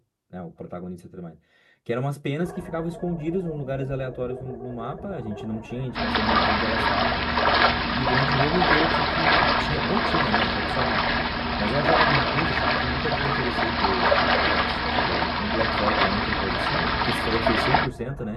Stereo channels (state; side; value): identical; both; correlation 1.00